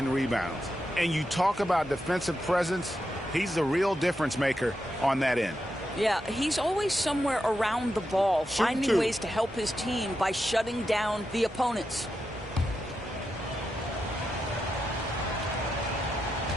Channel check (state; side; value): normal; both; correlation 0.87